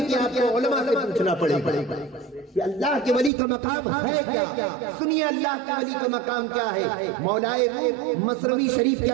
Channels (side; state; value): left; drops out; at 3.3 s